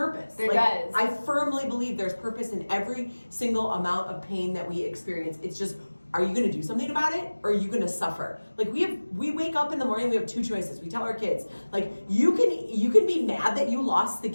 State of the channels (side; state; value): both; inverted; correlation -1.00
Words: There does. I firmly believe there's purpose in every single amount of pain that we experience. It's just, are you going to do something about it or are you going to suffer? Like we wake up in the morning, we have two choices. We tell our kids, like you can be mad that you lost the